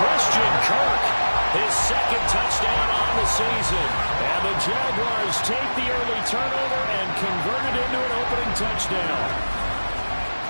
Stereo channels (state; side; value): inverted; both; correlation -1.00